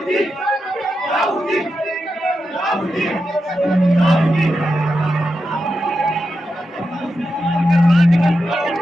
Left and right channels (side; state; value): both; normal; correlation 0.88